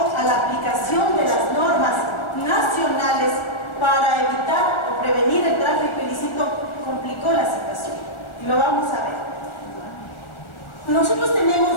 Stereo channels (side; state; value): right; late; 1.4 ms